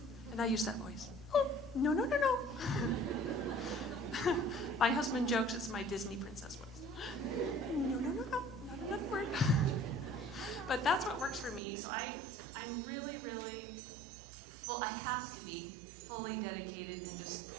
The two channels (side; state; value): left; drops out; at 11.6 s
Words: And I use that voice. Oh, No, no, no, no. My husband jokes it's my Disney princess voice. No, no, no, no, not another word. But that's what works for me. So I'm really, really full. I have to be fully dedicated and just